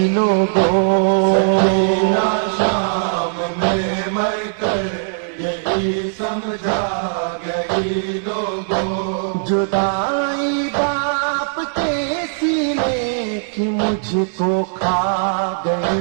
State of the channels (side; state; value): left; silent; 67 dB below the other